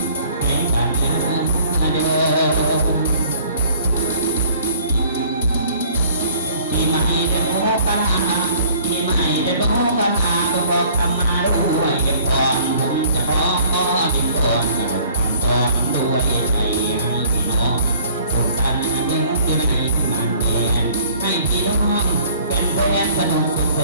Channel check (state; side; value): inverted; both; correlation -0.54